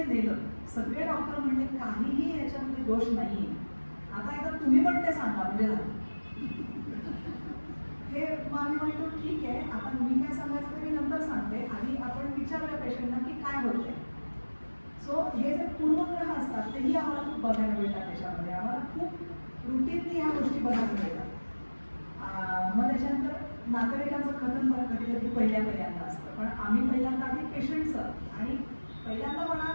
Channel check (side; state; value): both; inverted; correlation -1.00